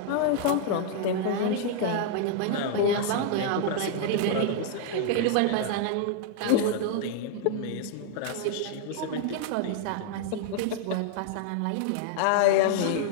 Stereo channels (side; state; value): both; different; correlation 0.00